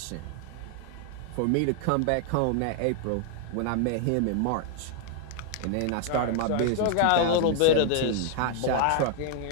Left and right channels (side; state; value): both; different; correlation 0.00